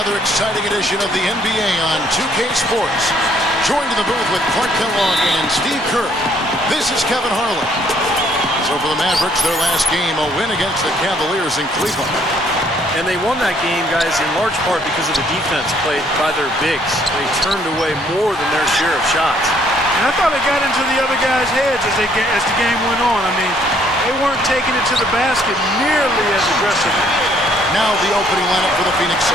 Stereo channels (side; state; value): both; normal; correlation 0.65